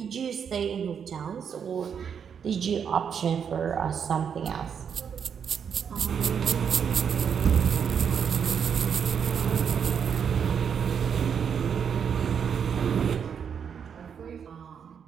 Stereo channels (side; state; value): left; quieter; 7.3 dB